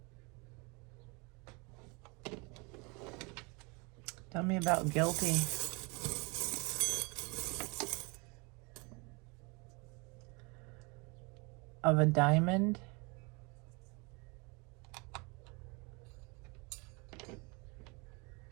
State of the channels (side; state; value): left; quieter; 29.7 dB